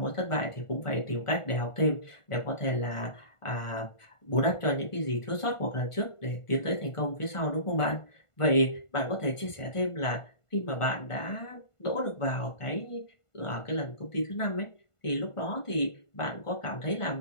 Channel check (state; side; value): late; right; 1.5 ms